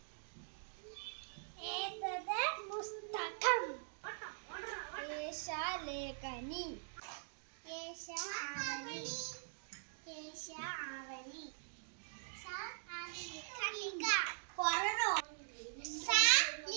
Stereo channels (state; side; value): silent; left; digital silence